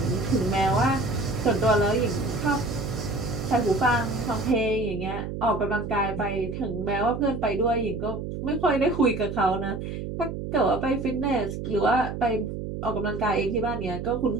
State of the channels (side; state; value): right; noise; hum, 6 dB below the sound